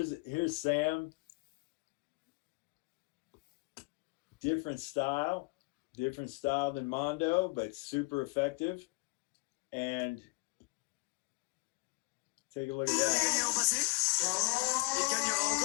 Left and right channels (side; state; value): right; quieter; 28.0 dB